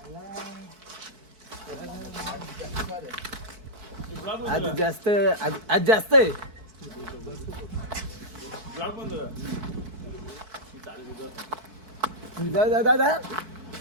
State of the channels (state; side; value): late; left; 4.6 ms